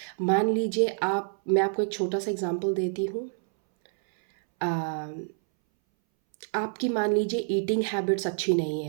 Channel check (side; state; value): left; silent; 60 dB below the other